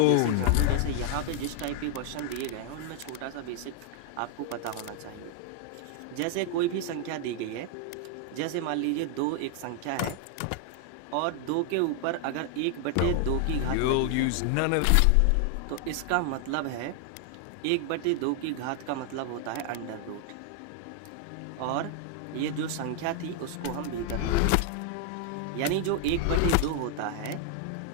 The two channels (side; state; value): both; different; correlation 0.00